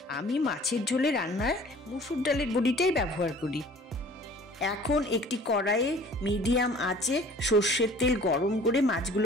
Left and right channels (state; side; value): normal; both; correlation 0.49